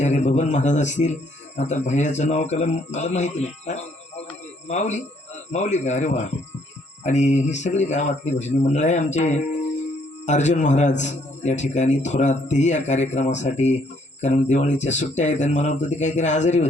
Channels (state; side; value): normal; both; correlation 0.67